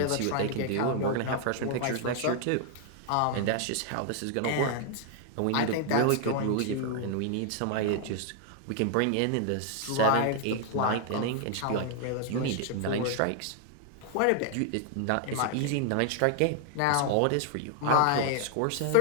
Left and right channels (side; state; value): both; different; correlation 0.00